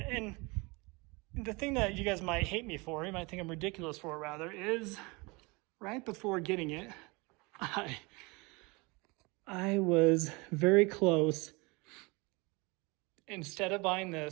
the thing that you guys might hate me for, you might think I'm ridiculous for rather, is right before getting it, I was very close. Instead of buying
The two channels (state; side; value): quieter; left; 26.6 dB